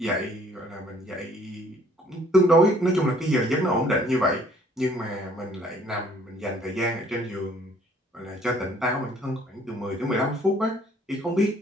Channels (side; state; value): both; normal; correlation 0.59